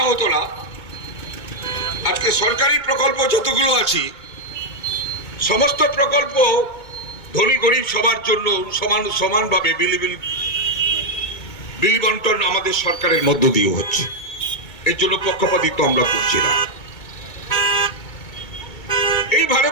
হতো না, আজকে সরকারি প্রকল্প যতগুলো আছে সমস্ত প্রকল্প ধনী গরিব সবার জন্য সমানভাবে বিলি বন্টন আমাদের সরকারের মধ্য দিয়ে হচ্ছে। এর জন্য পক্ষপাতিত্ব আমরা করছি না। এই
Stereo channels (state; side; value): late; right; 2.2 ms